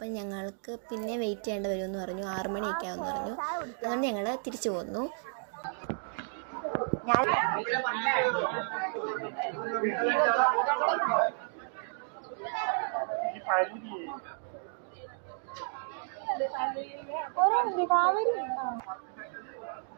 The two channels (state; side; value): silent; left; digital silence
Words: ഞങ്ങൾക്ക് പിന്നെ വെയിറ്റ് ചെയ്യേണ്ടി വരുമെന്ന് പറഞ്ഞു. 6 മണിയൊക്കെ ആവുമെന്ന് പറഞ്ഞു. അതുകൊണ്ട് ഞങ്ങൾ തിരിച്ചു പോന്നു.